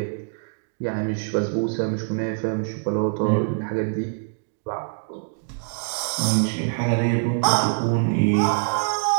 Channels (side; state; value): left; silent; digital silence